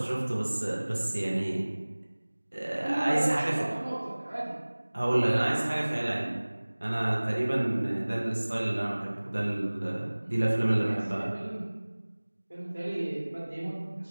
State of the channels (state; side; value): inverted; both; correlation -1.00